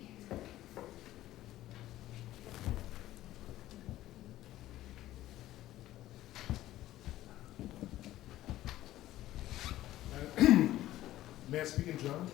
May I speak in German?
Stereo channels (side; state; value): right; quieter; 14.7 dB